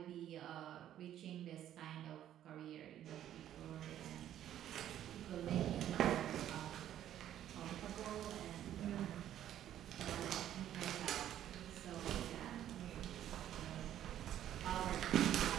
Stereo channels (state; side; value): quieter; left; 11.4 dB